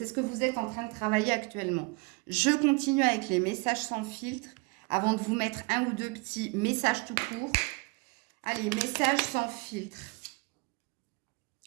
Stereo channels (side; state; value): left; quieter; 28.5 dB